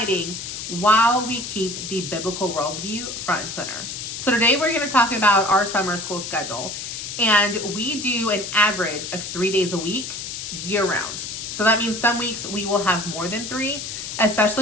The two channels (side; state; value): left; noise; hiss, 7 dB below the sound